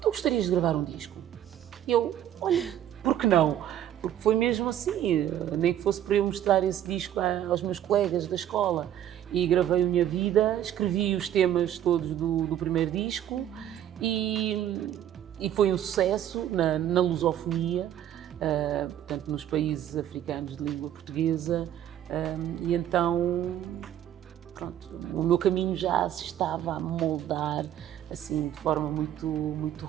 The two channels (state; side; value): quieter; left; 11.1 dB